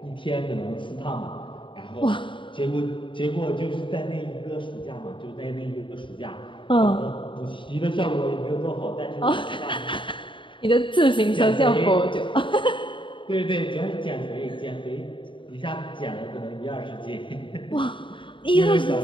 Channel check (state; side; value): late; right; 0.24 ms